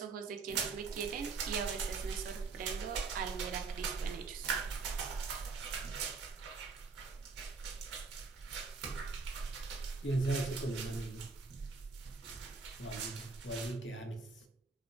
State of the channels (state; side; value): quieter; left; 4.4 dB